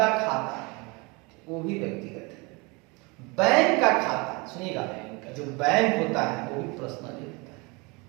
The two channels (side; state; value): left; quieter; 27.4 dB